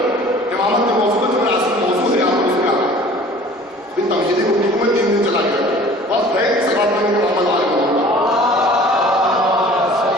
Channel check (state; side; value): normal; both; correlation 0.47